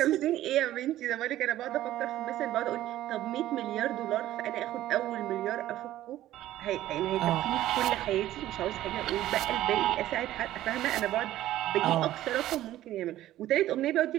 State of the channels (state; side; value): quieter; left; 14.0 dB